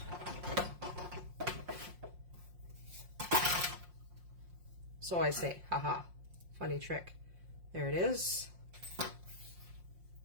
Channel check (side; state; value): left; late; 5.6 ms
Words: So I say, haha, funny trick. There it is.